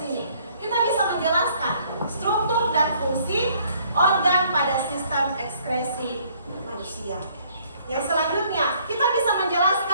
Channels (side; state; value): both; inverted; correlation -0.62